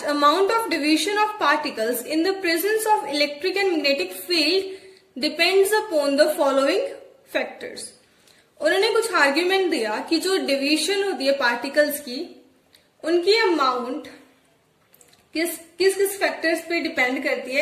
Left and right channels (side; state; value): both; identical; correlation 1.00